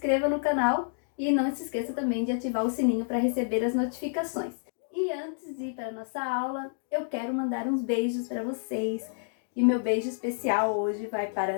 no canal e não se esqueça também de ativar o sininho para receber as notificações. E antes de ir para a nossa aula, eu quero mandar uns beijos para vocês. E meu beijo especial hoje vai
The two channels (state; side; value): silent; right; digital silence